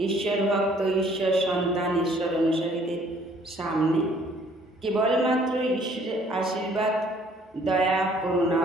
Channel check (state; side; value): normal; both; correlation 0.59